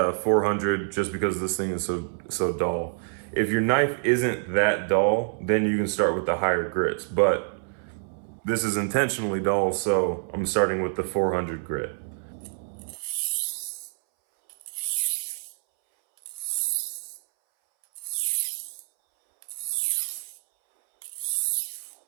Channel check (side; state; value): left; silent; 60 dB below the other